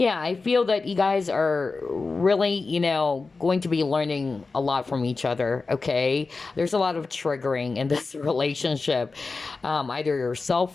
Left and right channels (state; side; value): quieter; right; 4.0 dB